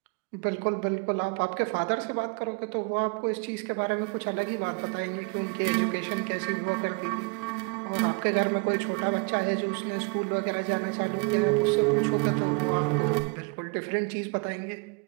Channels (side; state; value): left; quieter; 32.4 dB